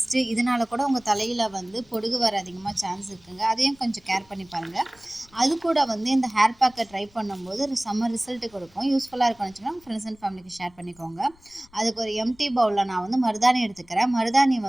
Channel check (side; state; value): left; noise; rumble, 29 dB below the sound